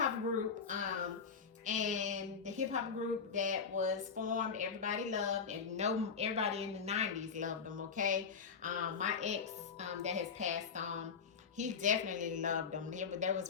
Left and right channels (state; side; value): quieter; right; 6.0 dB